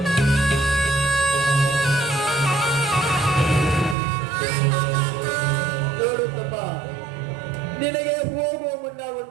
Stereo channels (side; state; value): left; drops out; at 4.0 s